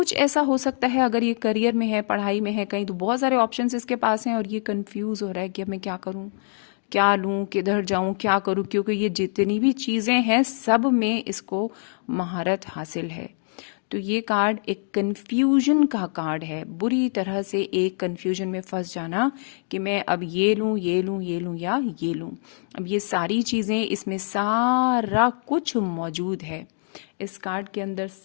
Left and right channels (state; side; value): silent; right; digital silence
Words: ऐसा हो सकता है अगर ये करियर में है, पढ़ाई में है कहीं, तो बहुत सारे ऑप्शंस इसके पास हैं और ये कंफ्यूज हो रहा है कि अब मैं क्या करूं, क्या लूं, किधर जाऊं, क्या करूं, क्योंकि ये जितनी भी चीजें हैं सब में इसको महारत हासिल है। तो ये कार्ड एक कंफ्यूजन का कार्ड है, बुरी तरह से एक कंफ्यूजन में फंस जाना कि मैं अब ये लूं, ये लूं, ये लूं या ये लूं। अब ये सारी चीजें, इसमें सारा कुछ मौजूद है, इस कार्ड के अंदर